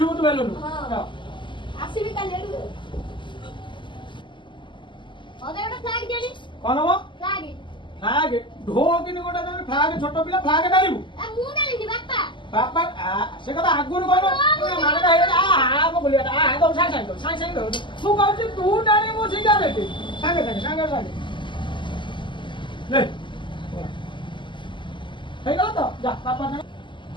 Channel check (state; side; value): late; right; 0.24 ms